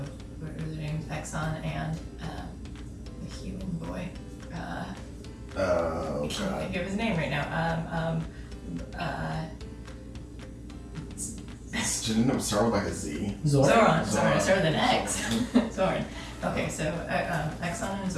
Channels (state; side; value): identical; both; correlation 1.00